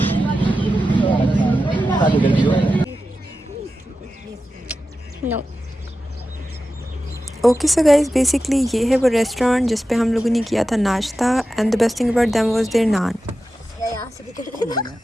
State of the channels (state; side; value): normal; both; correlation 0.92